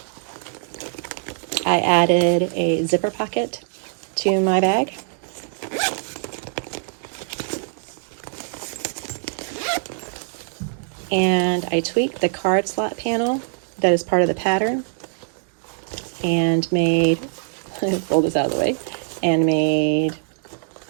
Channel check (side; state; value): left; silent; digital silence